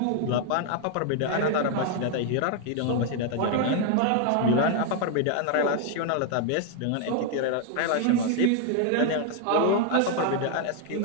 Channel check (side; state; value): both; different; correlation 0.00